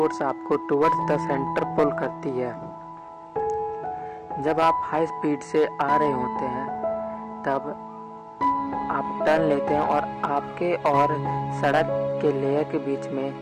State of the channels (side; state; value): both; identical; correlation 1.00